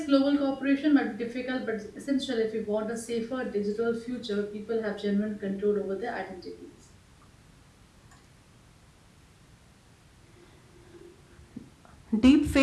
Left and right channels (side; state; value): both; identical; correlation 1.00